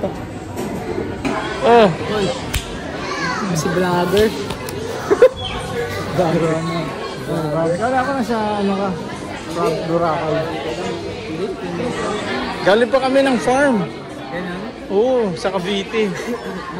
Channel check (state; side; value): identical; both; correlation 1.00